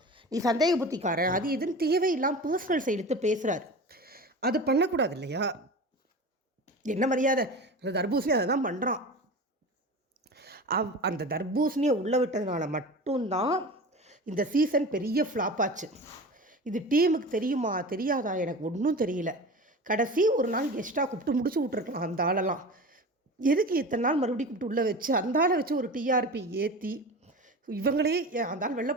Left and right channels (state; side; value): normal; both; correlation 0.33